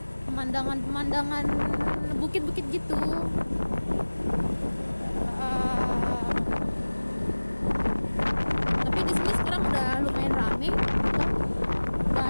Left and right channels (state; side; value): inverted; both; correlation -1.00